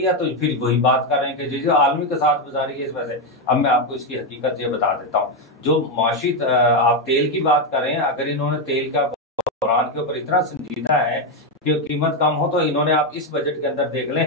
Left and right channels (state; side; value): normal; both; correlation 0.06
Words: है तो फिर वही बात कर रहे हैं कि जो आलमी के साथ गुजारी है इस वजह से। अब मैं आपको इसकी हकीकत ये बता देता हूँ। जो माशी आप तेल की बात कर रहे हैं, अगर इन्होंने तेल का बहरान के ऊपर इतना संजीदा है कि कीमत कम हो, तो इन्होंने आप इस बजट के अंदर देख